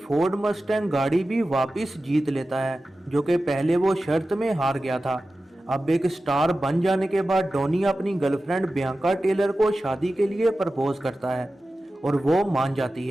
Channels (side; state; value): both; normal; correlation 0.94